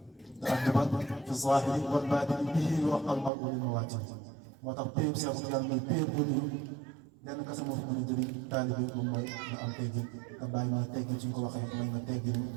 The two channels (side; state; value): left; drops out; at 3.3 s